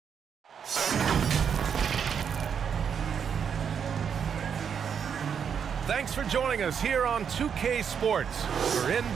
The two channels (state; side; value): quieter; left; 7.3 dB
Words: Thanks for joining us here on 2K Sports for